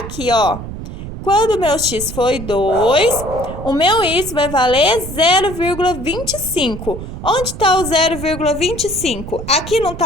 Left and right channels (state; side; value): noise; right; rumble, 9 dB below the sound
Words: ó. Quando o meu X for 2, o meu Y vai valer 0,25. Onde está o 0,25? Aqui não